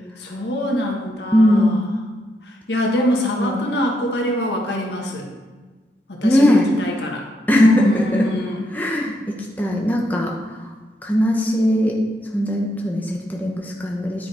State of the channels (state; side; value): normal; both; correlation 0.79